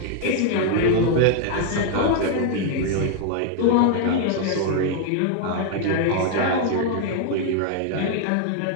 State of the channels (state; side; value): different; both; correlation 0.00